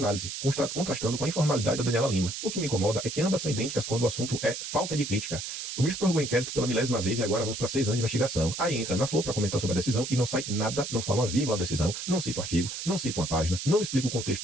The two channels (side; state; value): right; noise; hiss, 6 dB below the sound